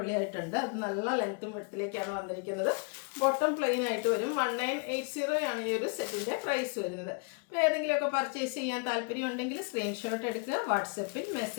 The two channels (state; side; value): quieter; right; 37.9 dB